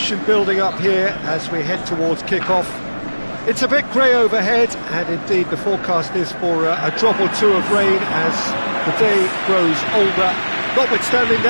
building up here as we head towards kick-off. It's a bit grey overhead, and indeed the forecast is for a drop or two of rain as the day grows older. Notwithstanding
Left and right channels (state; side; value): inverted; both; correlation -1.00